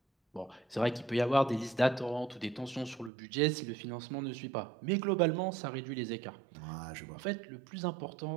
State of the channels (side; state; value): left; drops out; at 3.1 s